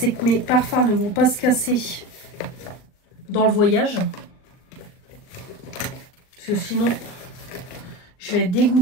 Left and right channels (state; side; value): late; right; 39 ms